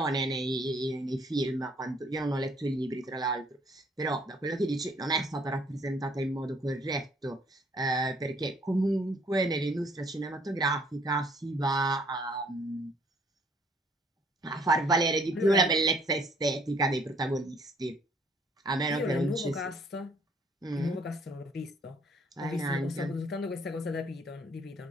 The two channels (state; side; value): normal; both; correlation 0.62